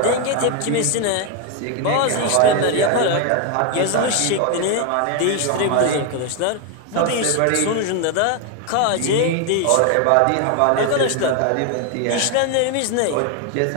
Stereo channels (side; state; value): both; different; correlation 0.01